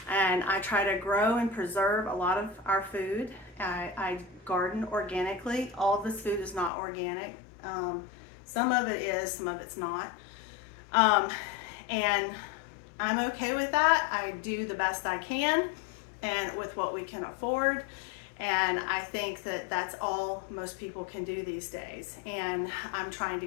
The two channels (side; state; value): right; drops out; at 6.7 s